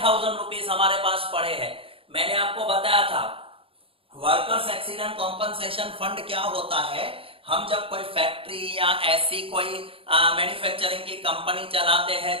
रुपीज हमारे पास पड़े हैं। मैंने आपको बताया था वर्कर्स एक्सीडेंट कॉम्पनसेशन फंड क्या होता है। हम जब कोई फैक्ट्री या ऐसी कोई मैन्युफैक्चरिंग की कंपनी चलाते हैं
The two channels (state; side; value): late; left; 0.27 ms